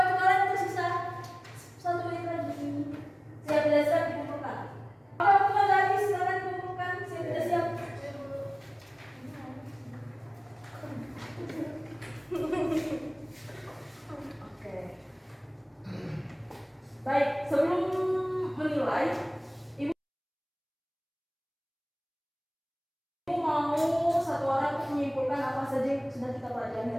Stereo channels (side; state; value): both; identical; correlation 1.00